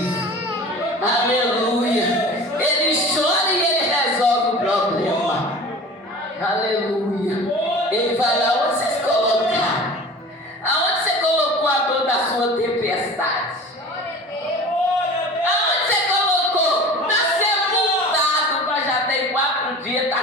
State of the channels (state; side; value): normal; both; correlation 0.39